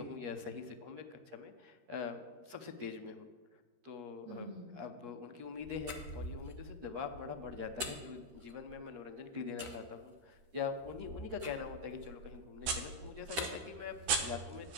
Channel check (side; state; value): left; late; 13 ms